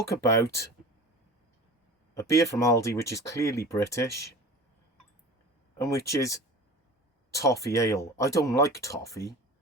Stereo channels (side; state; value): both; normal; correlation 0.37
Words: about a beer from Aldi which is clearly British and which is Toffee Ale. I don't like toffee,